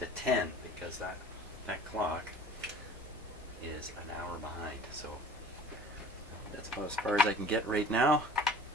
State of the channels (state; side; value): normal; both; correlation 0.45